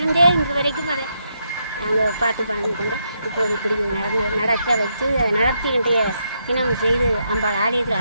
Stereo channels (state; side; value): inverted; both; correlation -0.80